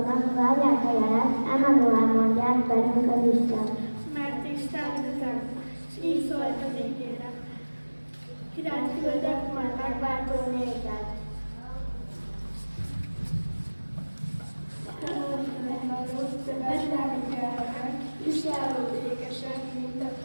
várják a jelet, emelően mondják velünk az Isten. Mert Isten üzem, s így szólt az égére. Királyt küldök, majd megváltó nézed. Betlehem gyermek, viselő békesen, mint a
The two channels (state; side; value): inverted; both; correlation -1.00